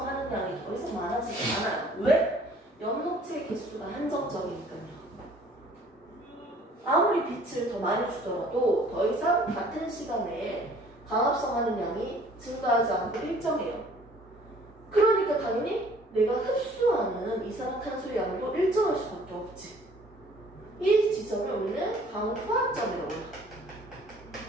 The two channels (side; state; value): both; normal; correlation 0.55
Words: 하는 양이 더 이상 많아지지 않아요. 왜? 연목체의 개수가 한정적이니까요. 아무리 빛을 더 많이 주더라도 더 이상 같은 시간에 강합성하는 양이 증가하지 않고 일정해요. 그러니까 당연히 내가 흡수하는 이산화탄소의 양도 일정할 수밖에 없지. 이 지점을 우리는 강화점이라고 해요.